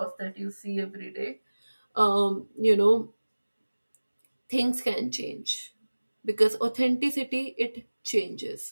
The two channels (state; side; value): inverted; both; correlation -1.00